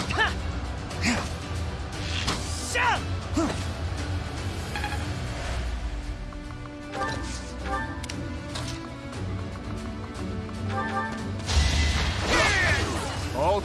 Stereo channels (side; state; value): both; identical; correlation 1.00